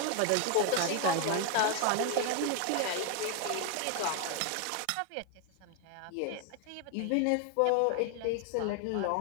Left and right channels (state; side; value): different; both; correlation 0.01